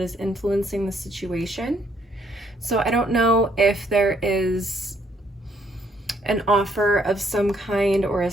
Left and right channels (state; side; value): normal; both; correlation 0.69